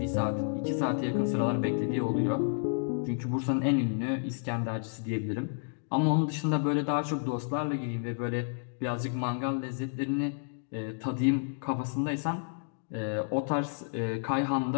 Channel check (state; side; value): silent; right; digital silence